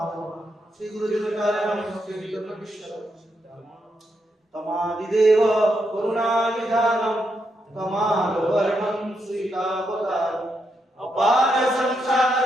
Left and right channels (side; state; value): both; normal; correlation 0.81